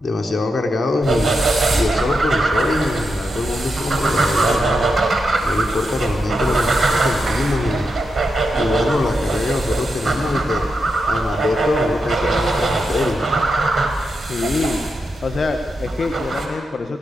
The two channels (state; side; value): normal; both; correlation 0.86